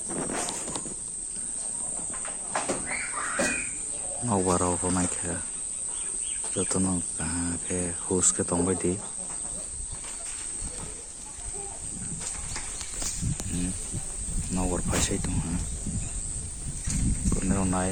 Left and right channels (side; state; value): both; identical; correlation 1.00